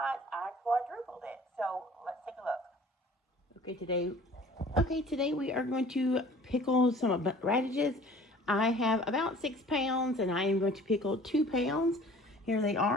I quadrupled it. So let's take a look. Today we are going to pickle some radishes. I have about 6 pounds, and I am going to pickle 2 pounds. Here they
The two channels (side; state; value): both; normal; correlation 0.49